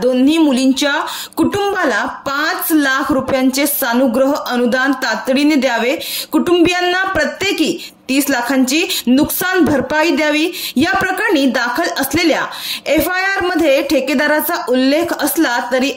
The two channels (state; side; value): identical; both; correlation 1.00